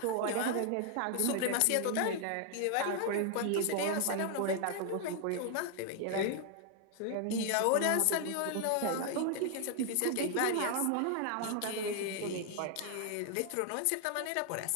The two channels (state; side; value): different; both; correlation 0.00